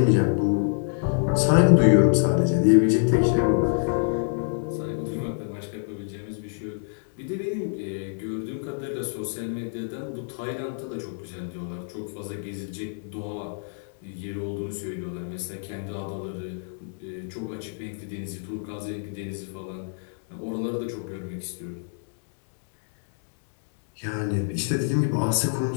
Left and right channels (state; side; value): silent; right; digital silence